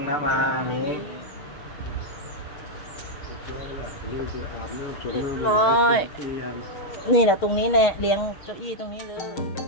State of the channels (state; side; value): late; right; 6.4 ms